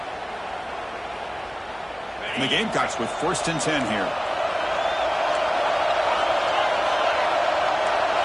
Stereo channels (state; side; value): identical; both; correlation 1.00